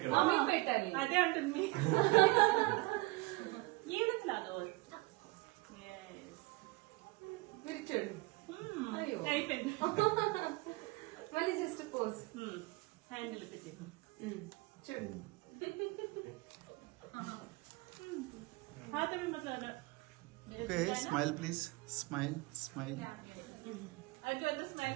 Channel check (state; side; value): quieter; left; 22.9 dB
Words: మమ్మీకి పెట్టాలి అదే అంటుంది ఏదో క్లాదో మీరు చూడండి అయిపోయింది మళ్ళీ జస్ట్ పోజ్ హ్యాండిల్ పెట్టి చూడండి हाँ तभी मतलब okay smile please smile smile अगर अंदर स्माइल